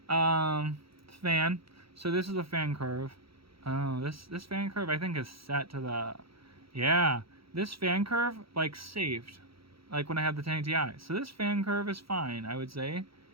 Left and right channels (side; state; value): left; late; 0.75 ms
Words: fan. So this is the fan curve. Oh, this fan curve I think is set to the, yeah. This fan curve, like, saved, like when I had the 1080 Ti. So this fan curve is fine, I would say.